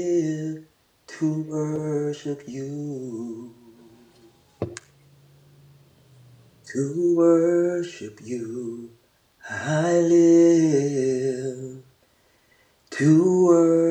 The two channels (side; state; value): both; identical; correlation 1.00